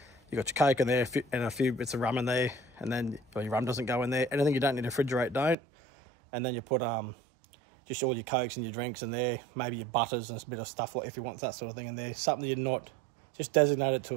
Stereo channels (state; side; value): drops out; left; at 5.6 s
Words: You got your Coke in there and a few bits of rum in there, and then your rum doesn't go in there. Anything you don't need to refrigerate, don't. And then you put just all your Cokes and your drinks in there, maybe your butters and a bit of stuff, like if you want that sort of thing in there. Something you're not, just designate it to